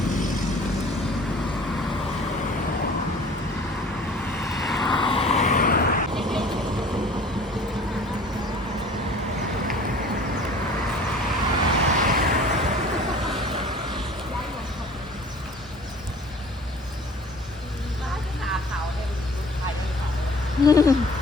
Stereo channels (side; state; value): both; normal; correlation 0.48